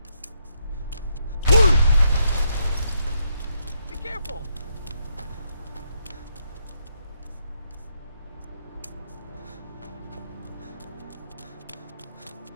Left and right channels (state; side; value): inverted; both; correlation -0.77